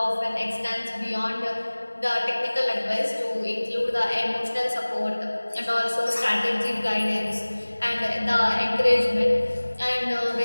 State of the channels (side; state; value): both; inverted; correlation -1.00